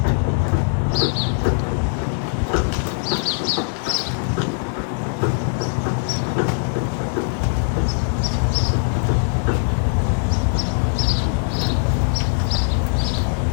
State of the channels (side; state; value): right; silent; 65 dB below the other